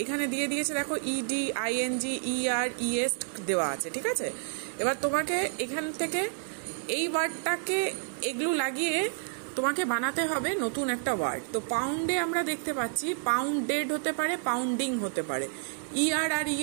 এখানে দিয়ে দিয়েছে দেখো ইডি, আইএনজি, ইআর, ইএস দেওয়া আছে, ঠিক আছে। এবার তোমাকে এখান থেকে এই ওয়ার্ডটাকে এগুলো লাগিয়ে তোমাকে বানাতে হবে নতুন একটা ওয়ার্ড। তো পাউন্ডে আমরা দেখতে পাচ্ছি পাউন্ডেড হতে পারে, পাউন্ডিং হতে পারে, ইআর আর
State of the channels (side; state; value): left; silent; digital silence